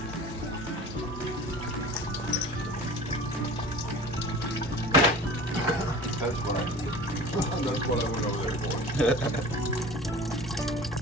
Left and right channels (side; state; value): both; normal; correlation 0.40